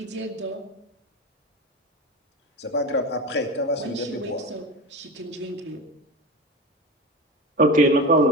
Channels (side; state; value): both; normal; correlation 0.25